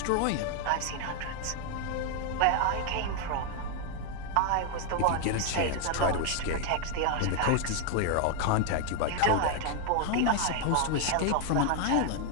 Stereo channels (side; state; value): both; different; correlation 0.00